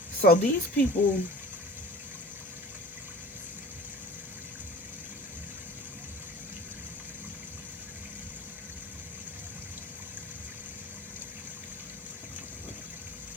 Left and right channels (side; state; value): both; normal; correlation 0.40